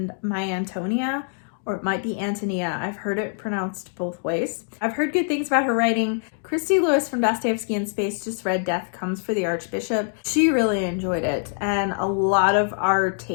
My Antonia, or it might be Antonia. I've heard it pronounced both ways. I've heard good things about her writing. Christy Lewis from Dostoevsky in Space just read Death Comes for the Archbishop. She really enjoyed it, and a lot of our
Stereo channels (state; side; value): silent; right; 59 dB below the other